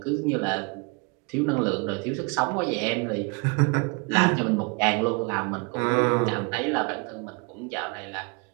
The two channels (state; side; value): quieter; left; 31.4 dB